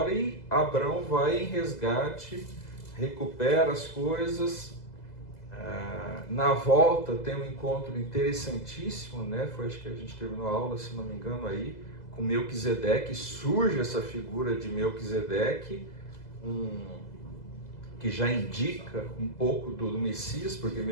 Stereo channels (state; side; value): late; right; 2.0 ms